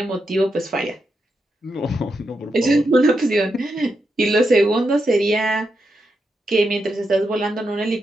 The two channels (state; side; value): normal; both; correlation 0.85